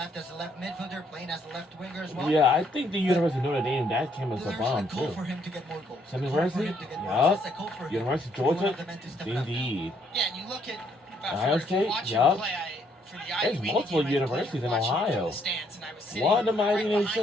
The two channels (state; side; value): normal; both; correlation 0.69